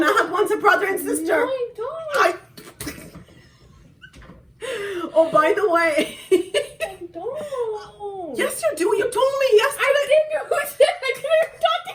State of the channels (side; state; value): both; identical; correlation 1.00